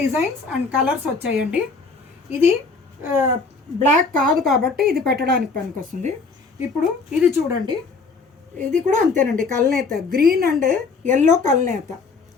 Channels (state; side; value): quieter; right; 4.3 dB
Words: డిజైన్స్ అండ్ కలర్స్ వచ్చాయండి. ఇది బ్లాక్ కాదు కాబట్టి ఇది పెట్టడానికి పనికొస్తుంది. ఇప్పుడు ఇది చూడండి, ఇది కూడా అంతేనండి. కల్నేత గ్రీన్ అండ్ ఎల్లో కల్నేత,